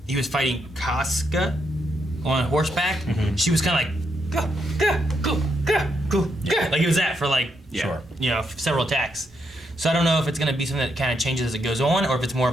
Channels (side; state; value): both; normal; correlation 0.79